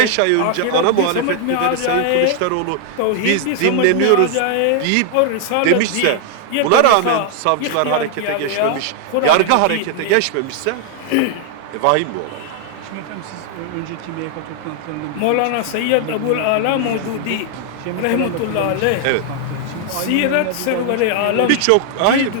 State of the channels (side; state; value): both; different; correlation 0.00